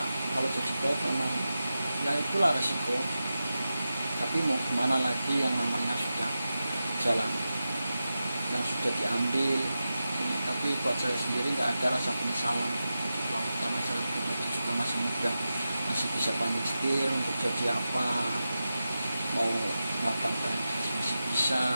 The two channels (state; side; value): inverted; both; correlation -0.92